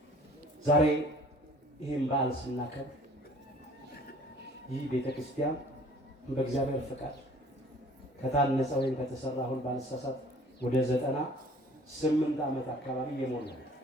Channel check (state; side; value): normal; both; correlation 0.52